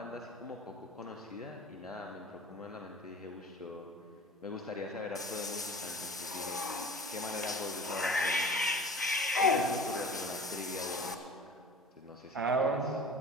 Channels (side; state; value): both; normal; correlation 0.41